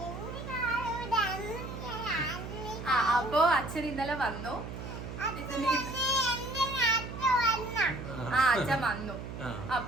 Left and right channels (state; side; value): noise; right; hum, 9 dB below the sound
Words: അപ്പോ അച്ഛൻ ഇന്നലെ വന്നു. അച്ഛൻ വന്നു.